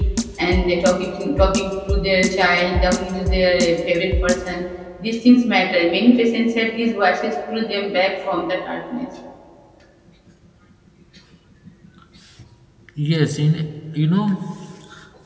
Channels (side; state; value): both; identical; correlation 1.00